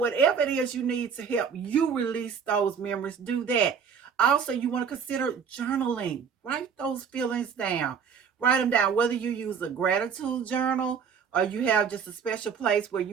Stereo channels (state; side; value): quieter; left; 6.7 dB